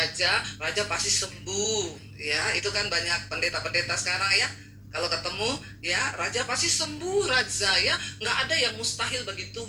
raja pasti sembuh. Ya, itu kan banyak pendeta-pendeta sekarang ya. Kalau ketemu, ya raja pasti sembuh raja ya. Nggak ada yang mustahil bagi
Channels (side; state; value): both; identical; correlation 1.00